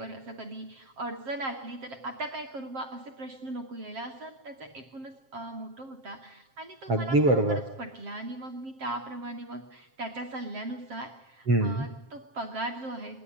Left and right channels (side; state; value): left; late; 7.5 ms